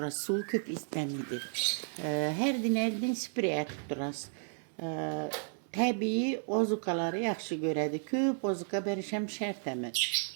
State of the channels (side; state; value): left; silent; 56 dB below the other